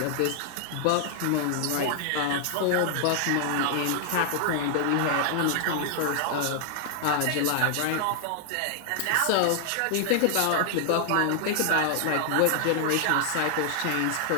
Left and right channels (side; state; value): both; different; correlation 0.00